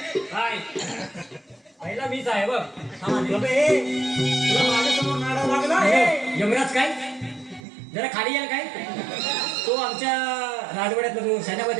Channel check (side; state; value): left; drops out; at 7.7 s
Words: काय पहिला मीच आहे बघ शबे तुला माझ्यासमोर नाडा लागला यमराज काय जरा खाली याल काय तो आमच्या राजवाड्यातला जो सेनापती